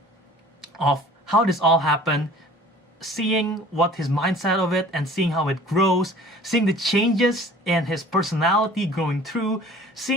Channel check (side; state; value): both; normal; correlation 0.47